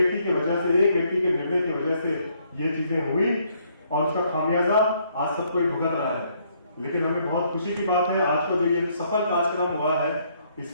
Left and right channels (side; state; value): both; inverted; correlation -0.69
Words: की वजह से, एक व्यक्ति के निर्णय की वजह से ये चीजें हुई और उसका खामियाजा आज सबको भुगत रहा है। लेकिन हमें बहुत खुशी की बात है, आज का जो ये सफल कार्यक्रम हुआ है,